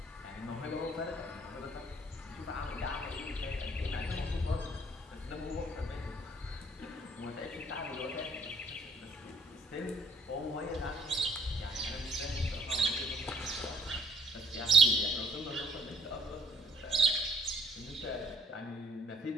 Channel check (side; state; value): both; normal; correlation 0.62